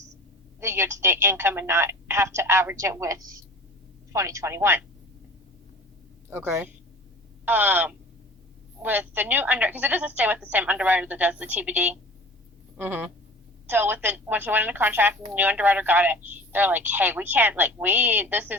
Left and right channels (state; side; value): normal; both; correlation 0.41